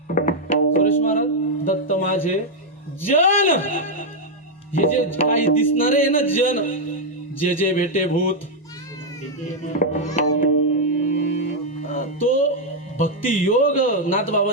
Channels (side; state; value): both; normal; correlation 0.00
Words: सुरेश महाराज, दत्त माझे जन. हे जे काही दिसणारे आहे ना जन, जे जे भेटे भूत, तो भक्ती योग